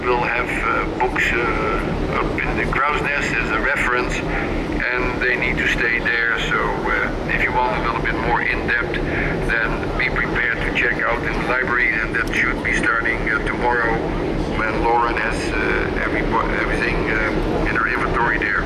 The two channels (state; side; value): identical; both; correlation 1.00